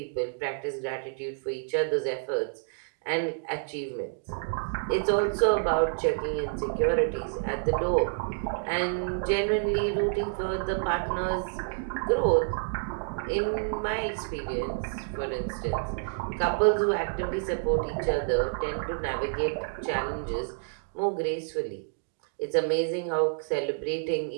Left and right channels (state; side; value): silent; left; digital silence